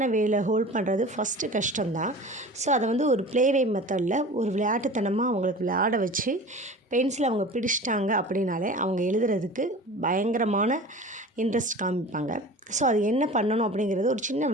வேயில் ஹோல்ட் பண்ணுறது ஃபஸ்ட்டு கஷ்டம்தான். ஸோ அதை ஒரு ப்ளேவே மெத்தடில் ஒரு விளையாட்டுத்தனமாக அவங்களுக்கு விளையாட வச்சு பென்சிலை அவங்க பிடிச்சிட்டாங்க அப்படின்னாலே அவங்க எழுதுறதுக்கு பயங்கரமான இன்ட்ரெஸ்ட் காமிப்பாங்க. ஸோ அது என்ன பண்ணணும் அப்படிங்கிறது ஒரு சின்ன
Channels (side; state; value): both; normal; correlation 0.38